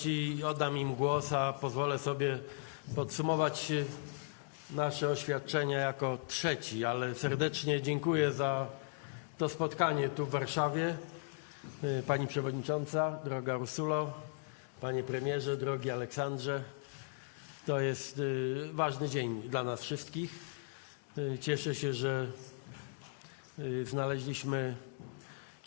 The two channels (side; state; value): right; silent; digital silence